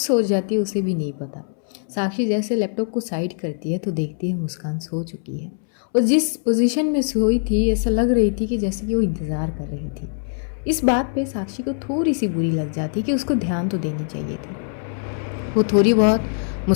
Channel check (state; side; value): silent; right; 64 dB below the other